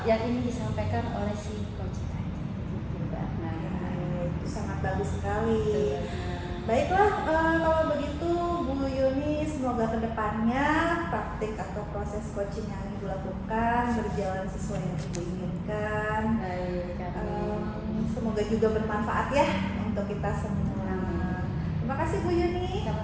ingin disampaikan oleh si coach tadi. Gitu, Bu Akna. Itu sangat bagus sekali. Betul, Bu Akna. Baiklah, kalau begitu Bu Yuni, semoga kedepannya praktik atau proses coaching yang Ibu lakukan berjalan sesuai yang Ibu inginkan. Baik, amin. Semoga juga bermanfaat ya untuk kita semua. Amin. Terima kasih Bu Yuni.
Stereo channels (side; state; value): both; identical; correlation 1.00